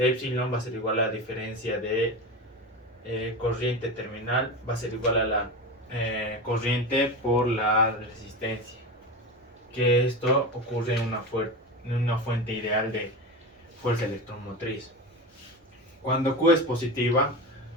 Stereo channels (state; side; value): normal; both; correlation 0.24